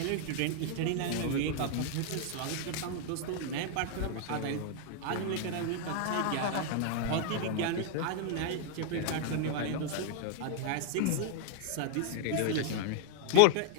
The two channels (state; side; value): different; both; correlation 0.00